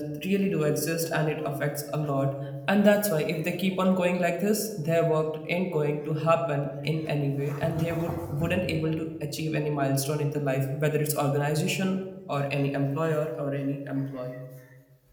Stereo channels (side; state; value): both; identical; correlation 1.00